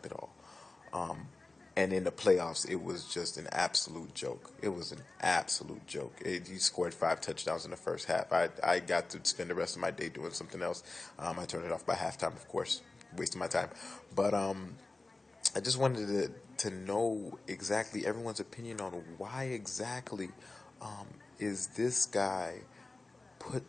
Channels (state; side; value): quieter; right; 3.2 dB